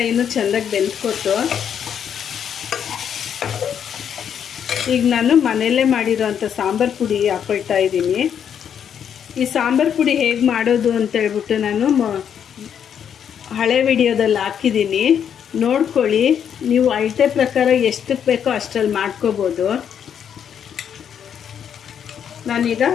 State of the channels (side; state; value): right; quieter; 8.4 dB